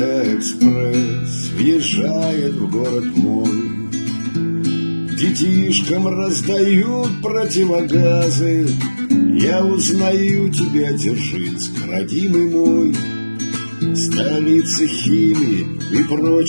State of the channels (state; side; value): inverted; both; correlation -1.00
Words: экспресс въезжает в город мой, детишкам раздают противогазы. Я узнаю тебя, Дзержинск, родимый мой, столица химии и